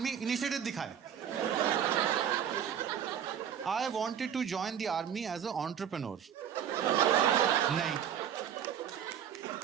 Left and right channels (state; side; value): quieter; left; 9.1 dB